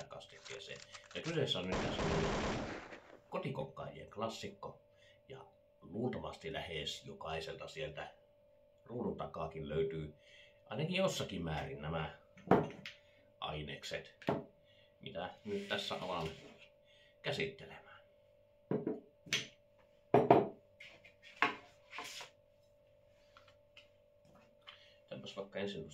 kastikkeeseen. Ja kyseessä on nyt kotikokkaajien klassikko, ja luultavasti lähes jokaiselta sieltä ruudun takaakin löytyy ainakin jossakin määrin nämä ainekset, mitä nyt tässä alan käsittelemään. Tämänpäs vaikka ensin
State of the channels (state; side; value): identical; both; correlation 1.00